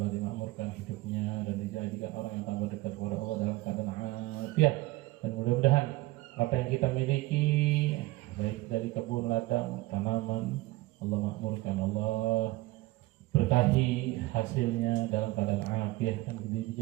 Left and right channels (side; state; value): left; quieter; 19.2 dB